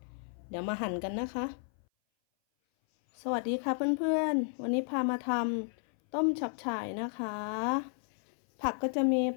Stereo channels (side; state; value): right; silent; 56 dB below the other